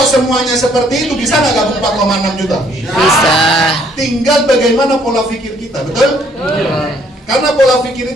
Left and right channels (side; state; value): both; normal; correlation 0.64